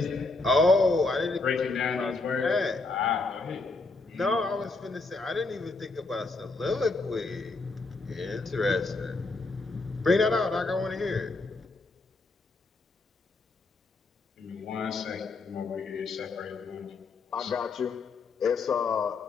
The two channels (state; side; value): quieter; right; 3.5 dB